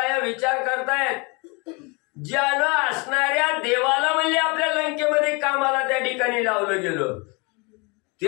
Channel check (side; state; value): right; quieter; 29.5 dB